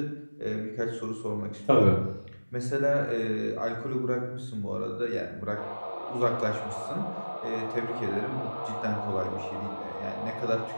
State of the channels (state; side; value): inverted; both; correlation -1.00